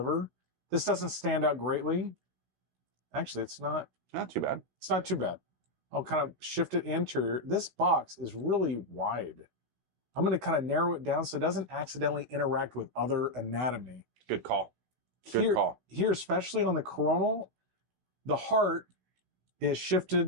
This doesn't stand out greatly. Actually, it's not too bad. It's not too bad. I'll kind of shift it anterior. This box is really wide. I'm going to kind of narrow it down so it doesn't accidentally interact with other anatomy. Good call. Good call. Here, especially on the coronal, the heart is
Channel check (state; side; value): late; left; 16 ms